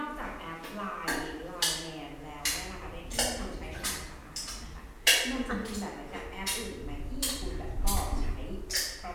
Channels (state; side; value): identical; both; correlation 1.00